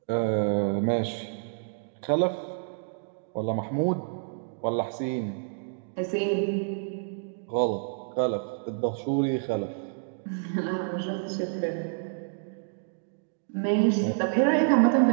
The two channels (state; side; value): silent; left; digital silence